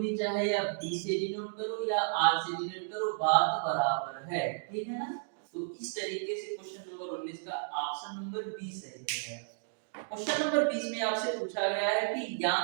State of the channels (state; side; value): silent; left; digital silence